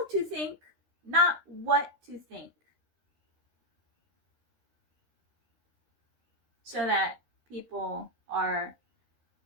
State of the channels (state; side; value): late; left; 13 ms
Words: to think, not what to think. So that people are